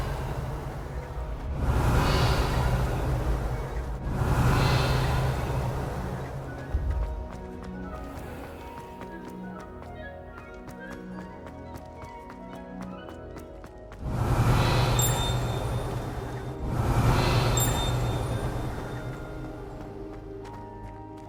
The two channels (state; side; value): identical; both; correlation 1.00